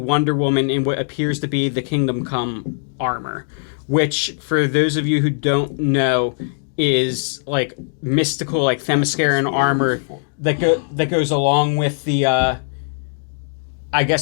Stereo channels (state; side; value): silent; right; digital silence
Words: Woman in what appears to be the Kingdom Come armor. Which, for those of you who don't know, is like mystical, like Themysciran armor that goes along with the, I